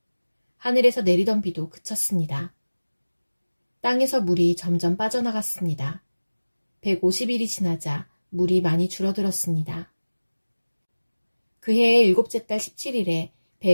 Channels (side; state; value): both; inverted; correlation -1.00